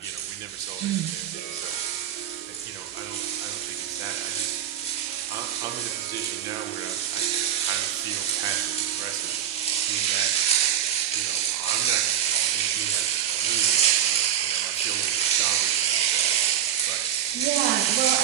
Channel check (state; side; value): quieter; left; 10.2 dB